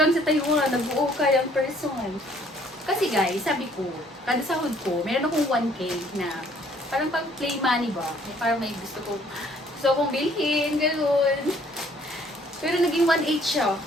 sa Taiwan, nag-uukay ang person. Kasi guys, sabi ko, kada sahod ko, meron akong 1K na parang pang play money ba? Parang may gusto kong bilhin, gano'n. Pero naging 1.8 siya.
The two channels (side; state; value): both; normal; correlation 0.61